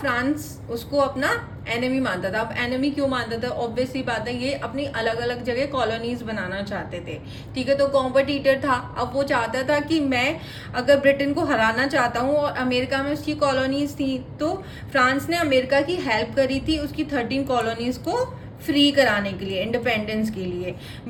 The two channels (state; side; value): identical; both; correlation 1.00